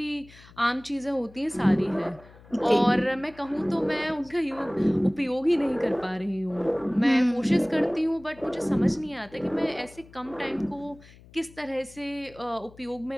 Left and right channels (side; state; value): left; noise; hum, 23 dB below the sound